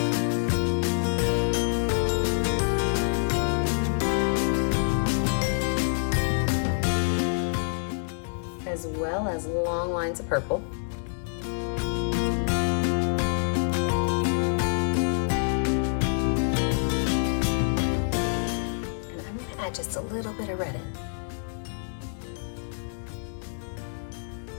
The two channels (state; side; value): silent; right; digital silence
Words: As well as long lines of purple. Just a little bit of red in.